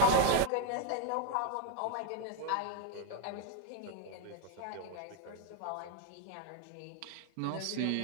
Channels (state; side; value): different; both; correlation 0.01